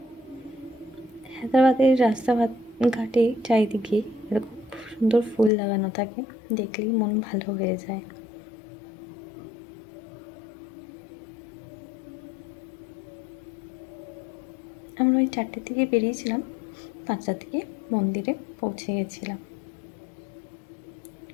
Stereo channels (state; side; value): drops out; right; at 5.5 s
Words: হায়দ্রাবাদের রাস্তাঘাটে চারিদিকে এরকম সুন্দর ফুল লাগানো থাকে, দেখলেই মন ভালো হয়ে যায়। আমরা ওই 4টের দিকে বেরিয়েছিলাম, 5টার দিকে মন্দিরে পৌঁছে গেছিলাম।